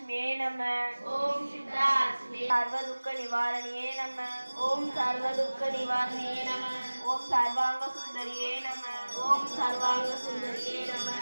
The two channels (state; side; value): inverted; both; correlation -1.00